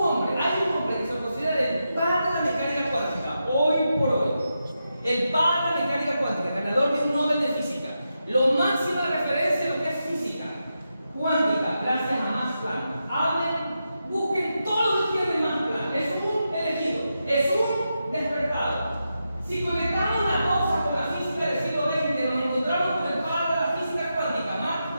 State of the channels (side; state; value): both; inverted; correlation -0.87